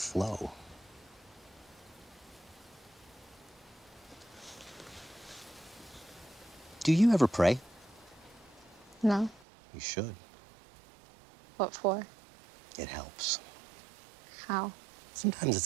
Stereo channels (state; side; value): drops out; left; at 9.5 s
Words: Do you ever pray? No. You should. What for? It helps. How? Sometimes